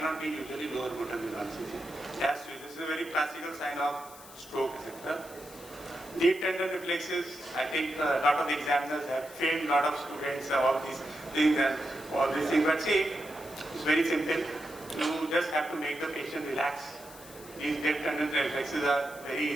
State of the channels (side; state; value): left; noise; hiss, 18 dB below the sound